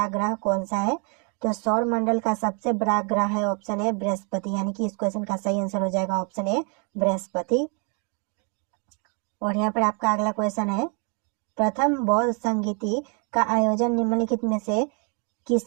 ग्रह कौन सा है। तो सौर मंडल का सबसे बड़ा ग्रह है ऑप्शन ए बृहस्पति, यानी कि इस क्वेश्चन का सही आंसर हो जाएगा ऑप्शन ए बृहस्पति। और यहाँ पर आपका अगला क्वेश्चन है, प्रथम बौद्ध संगीति का आयोजन निम्नलिखित में से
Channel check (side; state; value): left; quieter; 37.5 dB